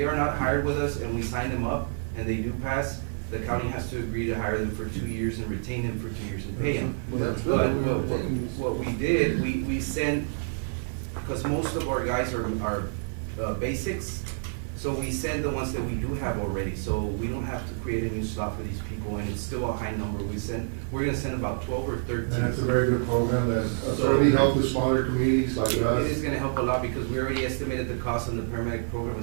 are not hired with us and we sign them up and they do pass, the county has to agree to hire them for 2 years and retain them for 2 years and pay them. Well, that's good. But what we did, we sent, because most of our guys are basics, so we send the ones that we do have already, so we don't have to create a new slot for these people, and it's still a high number. We're gonna send about 12 or 13. And that's a very good program that certainly helps with smaller communities like us. It is gonna help a lot, because we already estimated the cost on the paramedic program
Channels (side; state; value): left; silent; 59 dB below the other